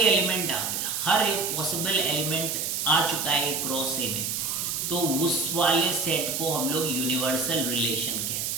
एलिमेंट आ गए, हर एक पॉसिबल एलिमेंट आ चुका है ए क्रॉस ए में, तो उस वाले सेट को हम लोग यूनिवर्सल रिलेशन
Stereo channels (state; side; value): noise; right; hiss, 1 dB below the sound